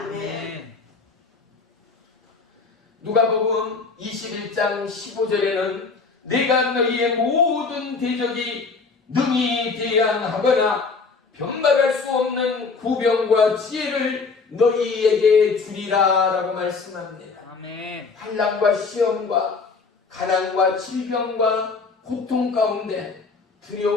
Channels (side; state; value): right; quieter; 4.5 dB